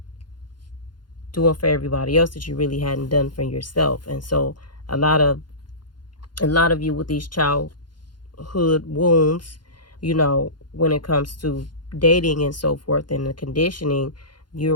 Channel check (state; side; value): late; right; 0.71 ms